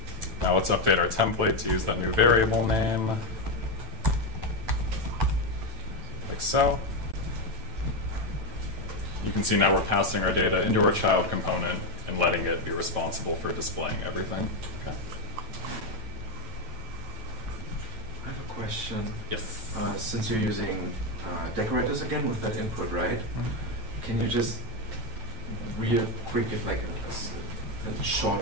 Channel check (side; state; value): left; late; 9.1 ms